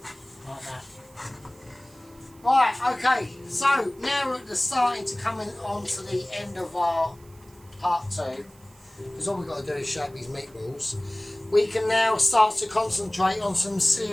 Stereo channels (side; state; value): right; noise; hiss, 27 dB below the sound